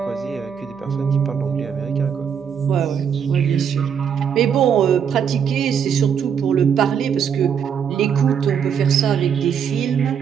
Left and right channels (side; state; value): left; quieter; 7.6 dB